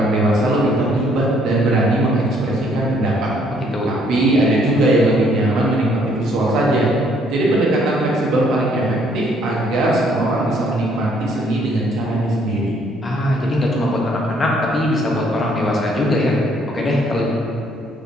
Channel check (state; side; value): normal; both; correlation 0.65